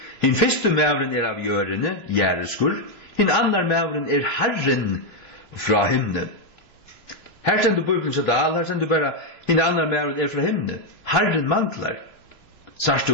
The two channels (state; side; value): late; right; 3.2 ms